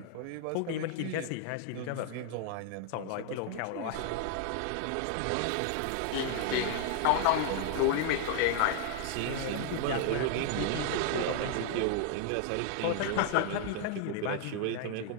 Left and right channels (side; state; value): both; different; correlation 0.00